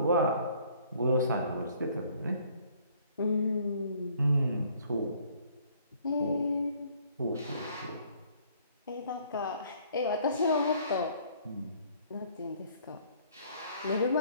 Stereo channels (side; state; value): both; inverted; correlation -0.60